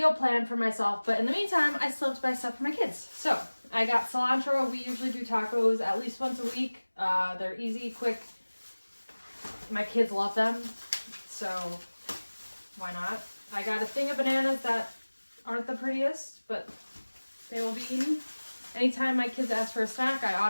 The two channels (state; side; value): inverted; both; correlation -1.00